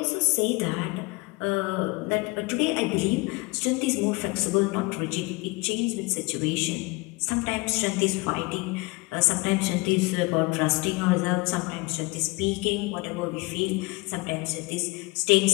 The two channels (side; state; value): right; quieter; 25.0 dB